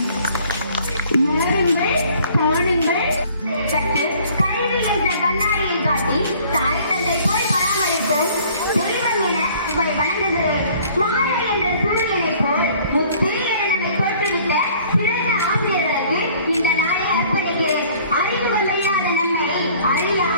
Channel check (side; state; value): both; inverted; correlation -0.55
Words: மாறுங்கள், காணுங்கள், கற்று கல்வி என்ற கண்ணாடியை காட்டி தாய் தந்தை போல் பராமரிப்போம் தெய்வம் என உங்களை வணங்குகிறேன். மாலை என்ற சூரியனை போல் முத்து என நம்மை தோற்றுவித்த சிறந்த ஆசிரியர்களுக்கு இந்த நாளை அர்ப்பணிக்கிறேன். அறிமுகமில்லாத நம்மை